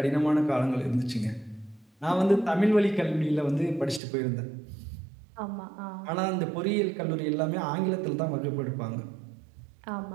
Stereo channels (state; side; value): drops out; left; at 4.0 s